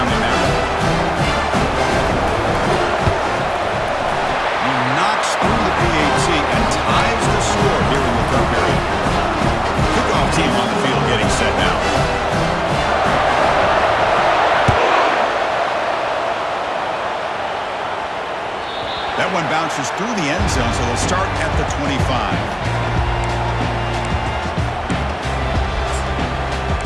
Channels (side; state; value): both; identical; correlation 1.00